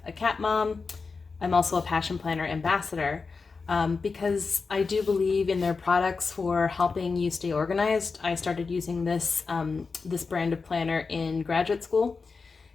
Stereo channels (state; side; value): quieter; right; 4.6 dB